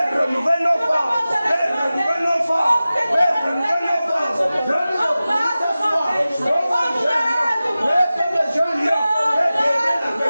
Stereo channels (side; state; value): both; inverted; correlation -0.96